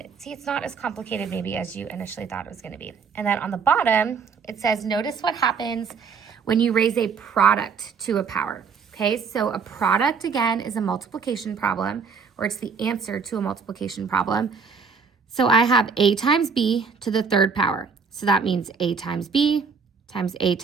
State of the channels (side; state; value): left; quieter; 5.6 dB